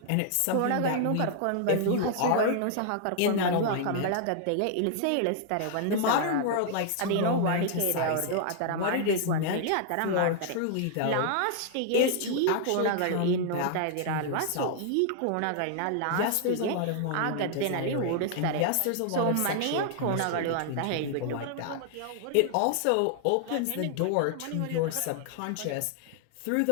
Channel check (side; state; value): both; different; correlation -0.01